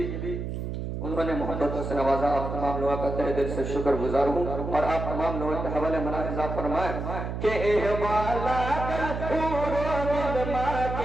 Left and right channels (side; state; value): right; noise; hum, 4 dB below the sound